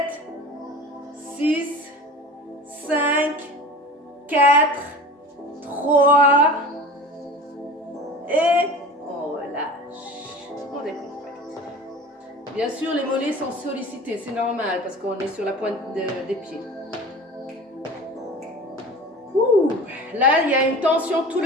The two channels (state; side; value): normal; both; correlation 0.36